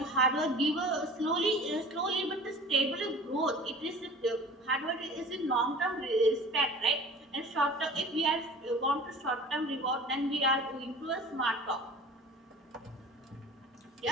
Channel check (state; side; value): normal; both; correlation 0.42